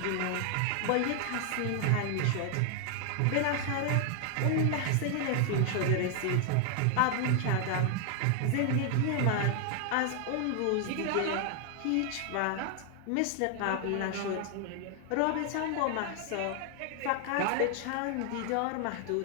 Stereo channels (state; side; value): different; both; correlation 0.00